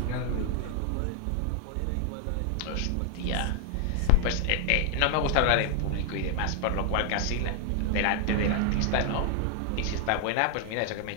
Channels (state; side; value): different; both; correlation 0.00